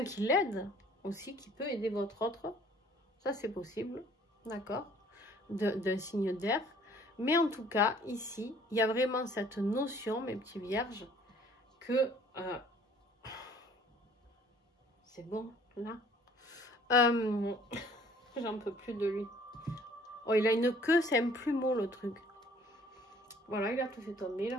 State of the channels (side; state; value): both; normal; correlation 0.55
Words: qui l'aide aussi, qui peut aider votre autre. Ça, c'est possible, d'accord, d'un signe d'air. Mais en tout cas, ici, il y a vraiment cette notion, mes petits vierges, que c'est bon, là. J'en peux plus de lui. Oh, il a une queue, c'est un plumeau, le truc. Voilà, il a tout fait tomber, il